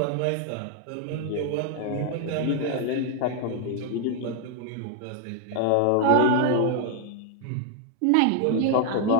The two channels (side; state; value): both; different; correlation 0.00